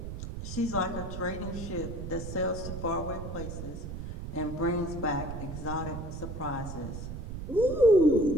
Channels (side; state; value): right; noise; rumble, 7 dB below the sound